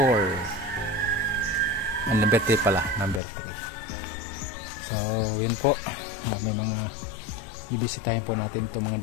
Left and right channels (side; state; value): right; drops out; at 3.2 s